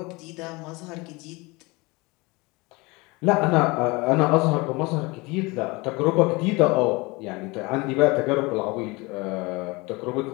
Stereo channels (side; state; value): right; quieter; 24.7 dB